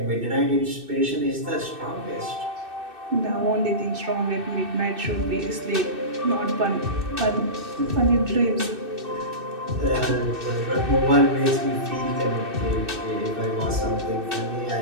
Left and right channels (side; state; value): left; late; 2.6 ms